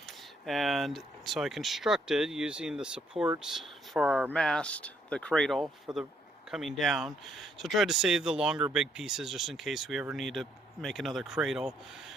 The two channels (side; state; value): both; normal; correlation 0.71